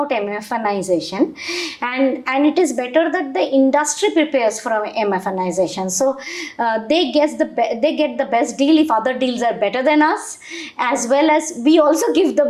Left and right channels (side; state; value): both; identical; correlation 1.00